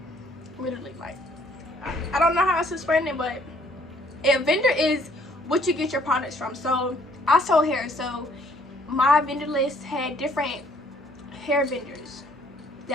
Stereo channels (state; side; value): normal; both; correlation 0.62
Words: Literally, like, I don't know how else to explain it, but a vendor is what you get your products from. So I sold hair, so my vendor list had different hair vendors